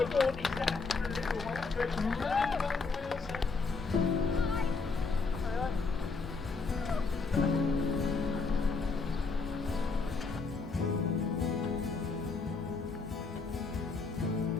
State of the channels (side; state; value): right; quieter; 4.3 dB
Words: he's had for a little while.